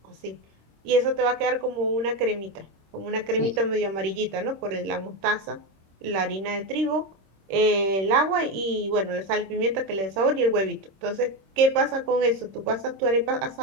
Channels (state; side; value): late; left; 26 ms